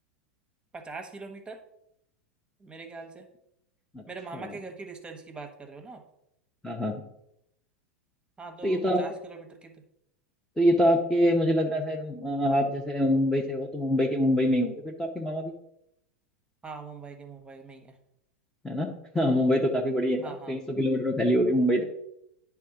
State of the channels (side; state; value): both; normal; correlation 0.72